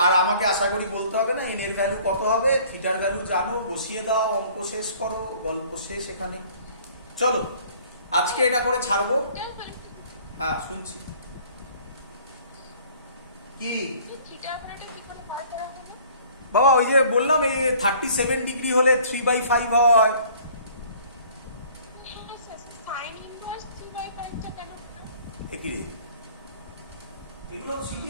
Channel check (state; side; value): inverted; both; correlation -0.53